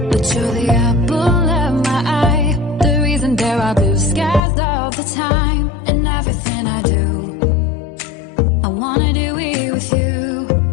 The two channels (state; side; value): drops out; right; at 4.4 s